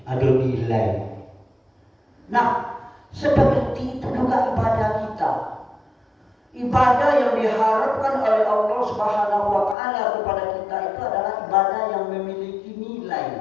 Ada nilai. Nah, seperti itu juga ibadah kita. Ibadah yang diharapkan oleh Allah Subhanahu wa taala kepada kita itu adalah ibadah yang memiliki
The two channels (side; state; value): right; drops out; at 9.8 s